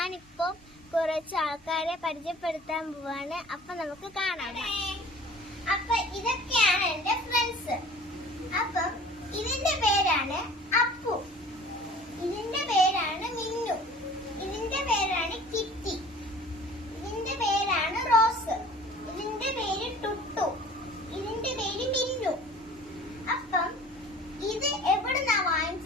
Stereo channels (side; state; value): both; normal; correlation 0.47